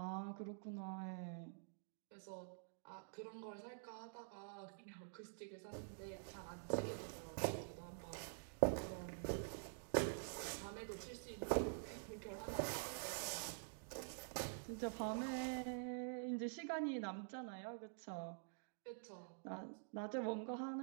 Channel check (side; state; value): left; silent; digital silence